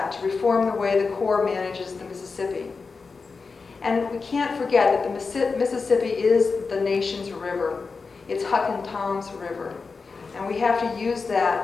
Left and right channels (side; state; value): right; quieter; 4.6 dB